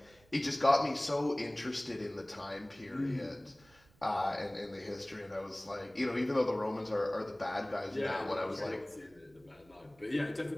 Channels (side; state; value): right; noise; rumble, 30 dB below the sound